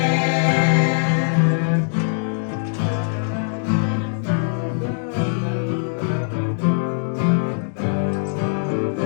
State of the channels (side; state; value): right; silent; digital silence